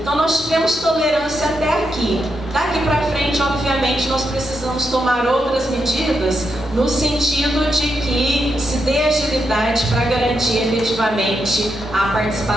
nós tivemos tolerância até aqui. Daqui para frente, obviamente, nós precisamos tomar outras medidas no sentido de que se dê agilidade para garantir efetivamente a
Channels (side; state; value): both; normal; correlation 0.83